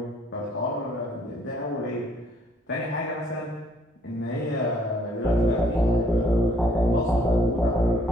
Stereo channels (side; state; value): both; normal; correlation 0.63